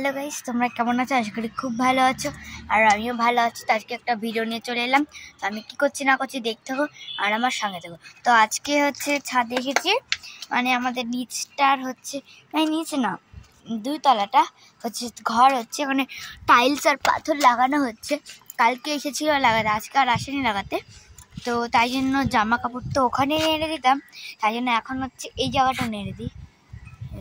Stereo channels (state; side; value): identical; both; correlation 1.00